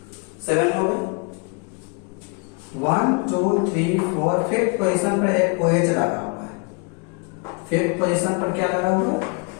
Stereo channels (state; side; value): quieter; right; 32.3 dB